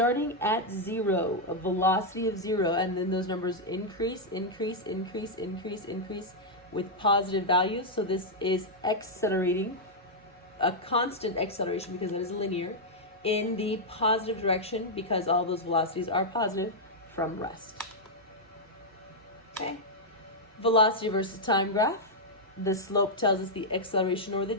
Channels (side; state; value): both; normal; correlation -0.04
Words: at 0, a velocity of 0, and then those numbers increase, increase, increase, increase, increase with positive values. So this is accelerating, a constant acceleration because it is linear, in the positive direction because all those velocities are positive from rest. Okay. Velocity versus time graph. The slope tells us the acceleration or the